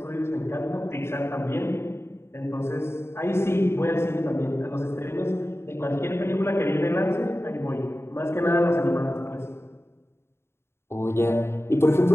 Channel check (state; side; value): late; right; 0.12 ms